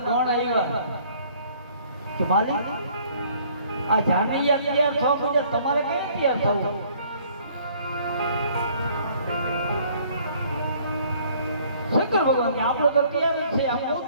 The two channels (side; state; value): both; inverted; correlation -0.58